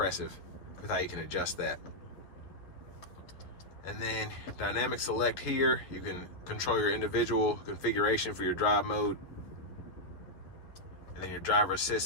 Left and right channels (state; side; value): late; right; 11 ms